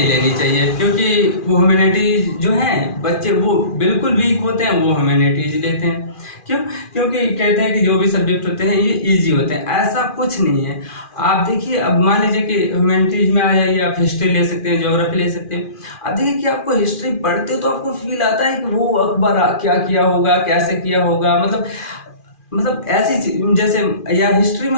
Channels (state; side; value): late; right; 2.4 ms